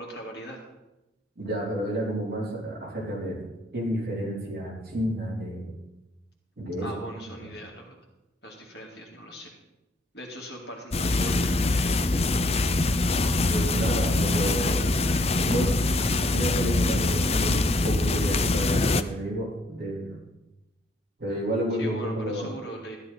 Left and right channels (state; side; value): normal; both; correlation 0.67